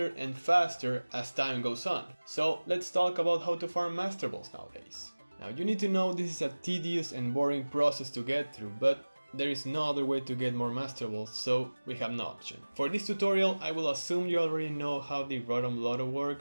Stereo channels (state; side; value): inverted; both; correlation -1.00